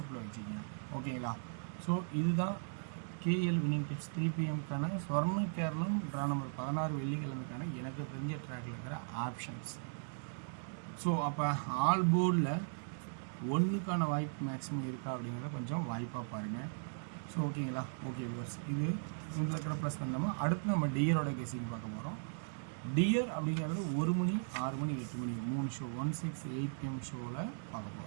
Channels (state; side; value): silent; left; digital silence